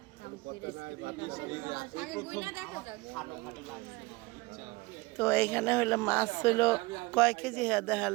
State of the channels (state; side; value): quieter; left; 23.1 dB